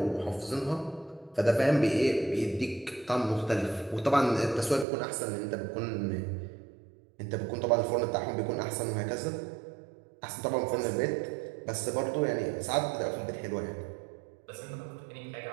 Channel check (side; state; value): left; drops out; at 4.9 s